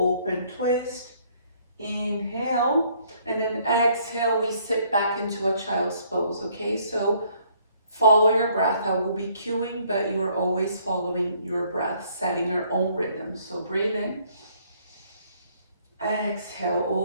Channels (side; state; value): both; inverted; correlation -0.64